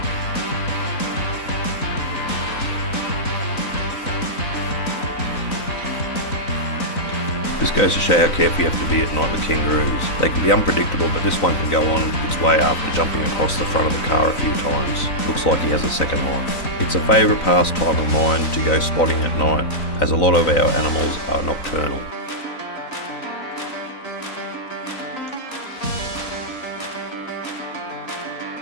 This goes to show how careful you have to be at night with kangaroos. They can be unpredictable, but this one can go on its way after jumping across the front of the car a few times. Looks like he has a second life. It's a favourite pastime of mine to go spotting at night, as a lot of our animals are nocturnal.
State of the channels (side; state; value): right; late; 3.9 ms